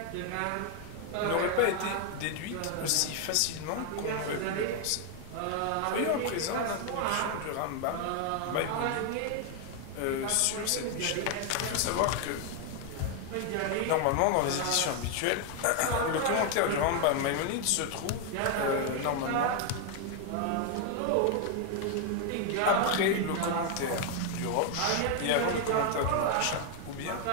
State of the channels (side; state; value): both; different; correlation 0.00